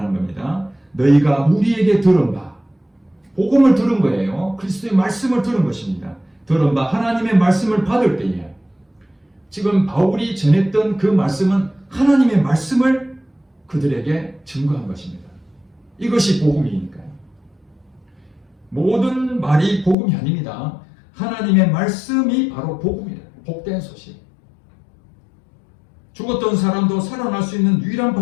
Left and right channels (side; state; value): right; drops out; at 20.0 s